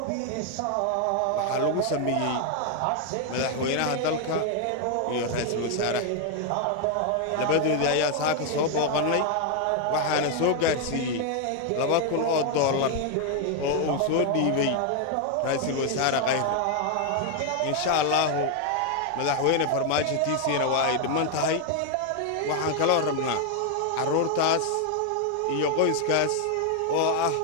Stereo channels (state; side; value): different; both; correlation 0.00